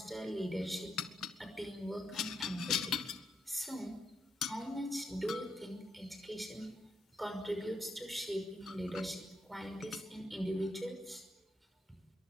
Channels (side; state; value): both; normal; correlation 0.81